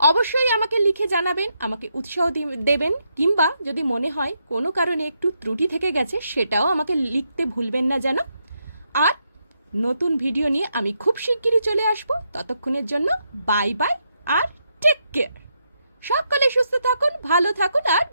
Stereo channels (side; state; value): both; inverted; correlation -0.80